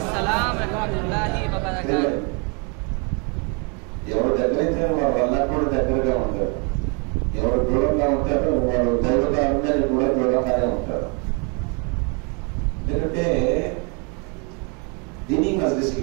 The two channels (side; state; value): left; quieter; 34.1 dB